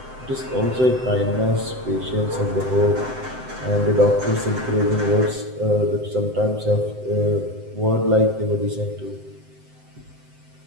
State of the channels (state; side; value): late; left; 7.8 ms